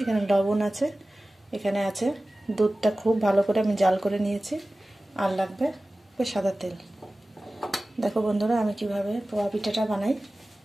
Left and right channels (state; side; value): normal; both; correlation 0.97